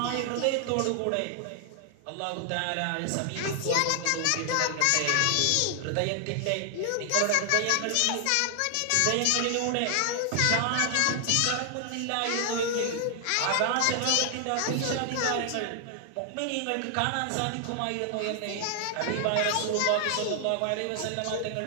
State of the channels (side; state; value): both; different; correlation 0.00